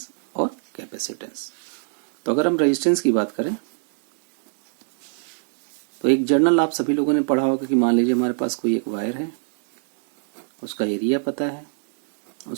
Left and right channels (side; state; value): left; silent; 64 dB below the other